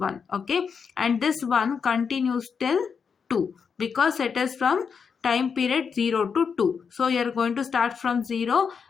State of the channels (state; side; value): quieter; right; 6.2 dB